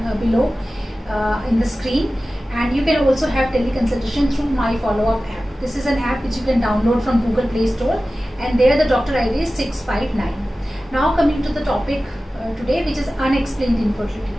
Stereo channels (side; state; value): both; normal; correlation 0.96